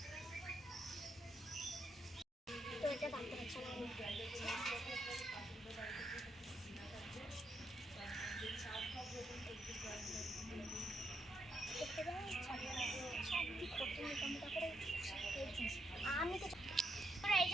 তো এটা ভাবতে পারছি না। আমি তো এই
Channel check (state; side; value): normal; both; correlation 0.79